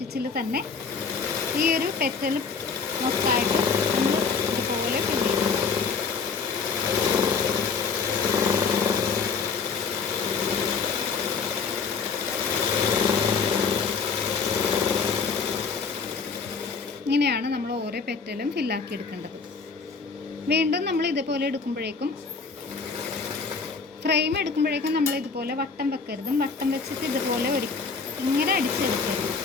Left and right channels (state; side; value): quieter; right; 5.2 dB